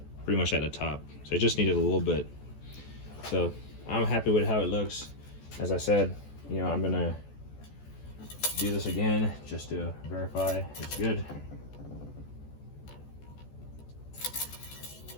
pretty much at the top. So I just needed a little bit. So I'm happy with how it looks. As I said, you know, I'm gonna do this again just to verify it's good.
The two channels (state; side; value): late; right; 14 ms